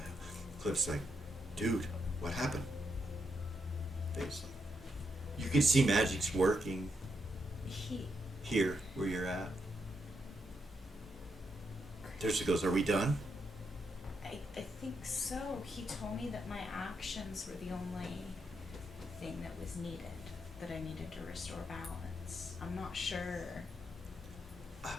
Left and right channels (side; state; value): both; normal; correlation 0.81